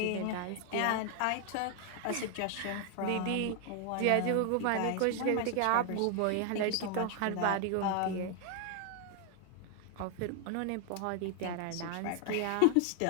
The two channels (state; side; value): different; both; correlation 0.00